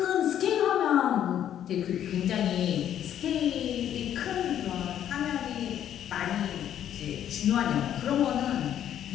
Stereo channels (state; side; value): quieter; right; 10.4 dB